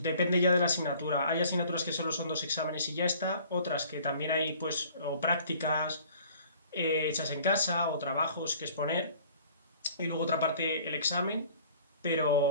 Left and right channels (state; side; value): inverted; both; correlation -0.51